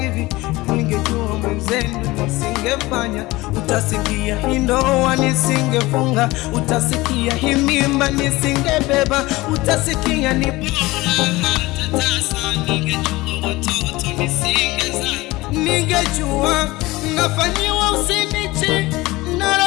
ningejua mwenzenu nisingefanya. Utasikia hii ndoa nisingefunga, utasikia hii mimba nisingebeba, utasikia ni bora hata tasa, ningejua watoto nisingezaa. Ningejua nafanyiwa usinichi na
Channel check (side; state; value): right; quieter; 20.3 dB